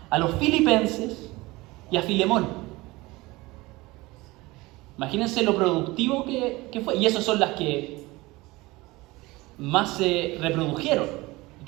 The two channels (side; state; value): left; quieter; 21.3 dB